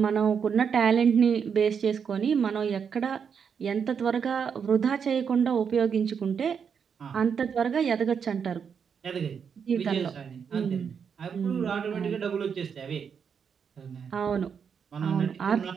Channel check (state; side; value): quieter; left; 6.8 dB